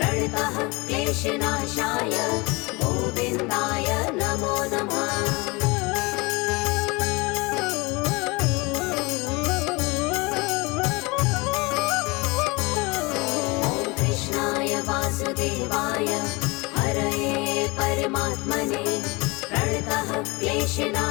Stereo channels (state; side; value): quieter; right; 25.8 dB